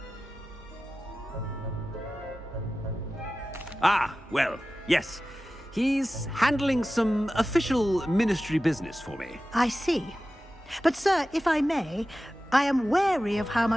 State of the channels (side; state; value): both; normal; correlation 0.95